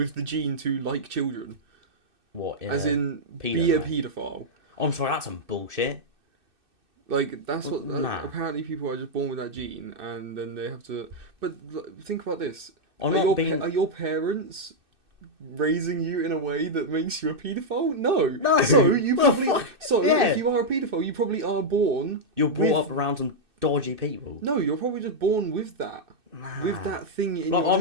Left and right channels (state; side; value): late; left; 2.6 ms